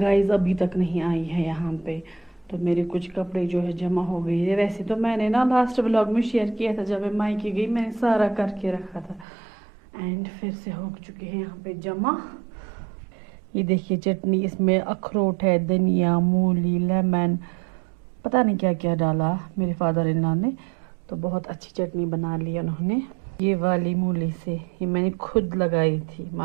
अभी तक नहीं आई है यहाँ पे। तो मेरे कुछ कपड़े जो है जमा हो गई है। वैसे तो मैंने ना लास्ट व्लॉग में शेयर किया था, जब मैं मायके गई मैंने सारा करके रखा था एंड फिर से हो चुके हैं यहाँ पे जमा। ये देखिए चटनी, इसमें अखरोट है, धनिया, मूली, लेमन, पता नहीं क्या क्या डाला मेरे फादर इन लॉ ने। तो बहुत अच्छी चटनी बना ली उन्होंने। ये वाली मूली से, ये मैंने खुद लगाई थी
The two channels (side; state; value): left; drops out; at 9.2 s